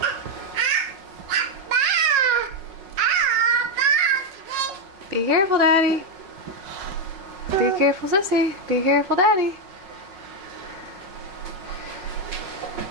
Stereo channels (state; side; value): late; left; 5.5 ms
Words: Be careful, Daddy. Be careful, Sissy. Be careful, Daddy.